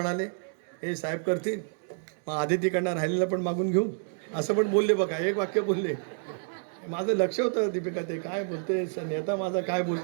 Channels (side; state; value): left; silent; digital silence